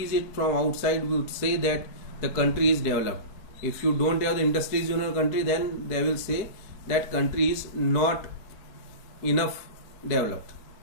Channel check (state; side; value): late; right; 4.6 ms